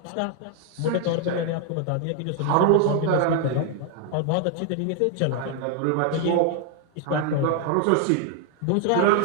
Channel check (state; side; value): different; both; correlation 0.00